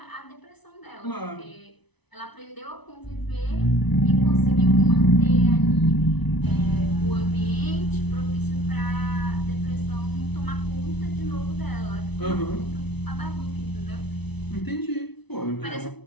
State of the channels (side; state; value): right; late; 0.99 ms